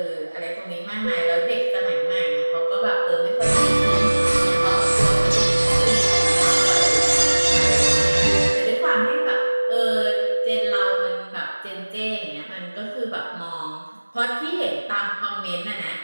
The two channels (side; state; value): both; inverted; correlation -1.00